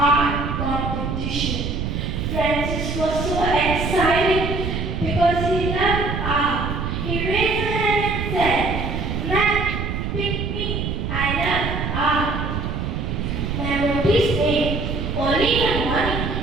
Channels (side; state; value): right; noise; rumble, 3 dB below the sound